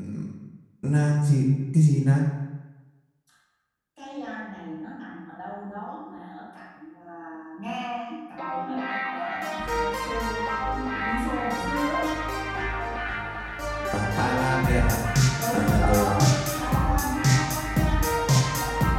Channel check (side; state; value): both; identical; correlation 1.00